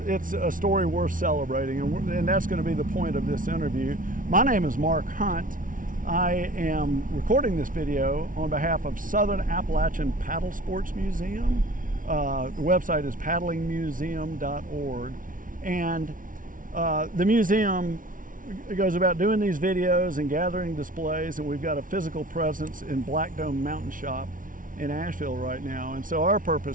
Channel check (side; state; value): left; late; 0.38 ms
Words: a story worth celebrating, and that's going to be the point of this interview. My name is Mark Hunt. I am recording this video on behalf of Southern Appalachian Paddlesports Museum. The website is paddlingmuseum.org, and the museum goes about doing these videos and gathering displays, and we've got a physical presence in Black Dome Mountain Shop in Asheville right now. And so our